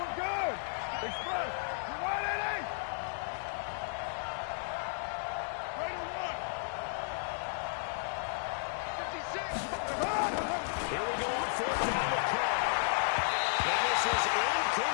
good. Express. You're right, Eddie. Right on 1. 56. Here we go on 4th down with Carr. And this is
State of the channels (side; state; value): right; silent; digital silence